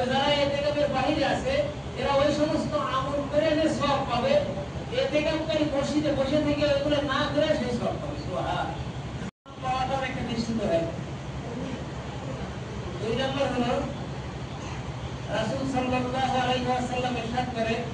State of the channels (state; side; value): identical; both; correlation 1.00